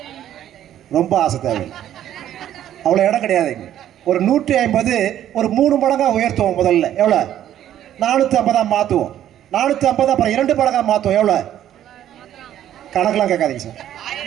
ரொம்ப ஆசை தேவை, அவ்வளோ இடம் கிடையாது. ஒரு 150 ஒரு 3 மடங்கா உயர்த்துவோம். முதல்ல எவ்வளோ? 450 மாற்றுவோம். 450 அப்புறம் 2 மடங்கா மாற்றுவோம். எவ்வளோ? கணக்கெல்லாம் கேட்காதீங்க சார்.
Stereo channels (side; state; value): left; quieter; 11.4 dB